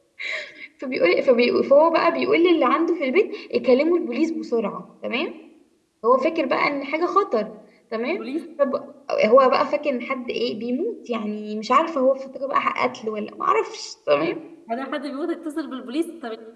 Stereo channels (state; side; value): identical; both; correlation 1.00